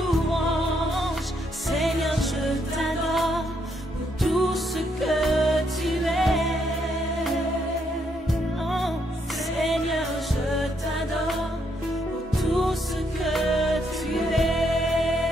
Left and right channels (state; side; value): normal; both; correlation 0.75